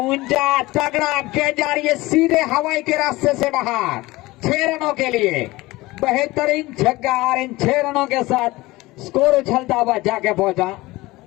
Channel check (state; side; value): quieter; right; 20.0 dB